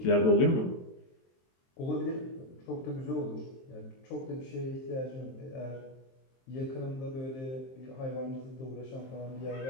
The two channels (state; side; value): late; right; 23 ms